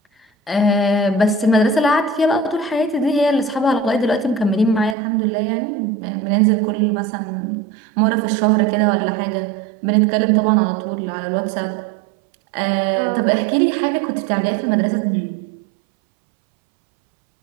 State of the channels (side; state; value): left; drops out; at 5.0 s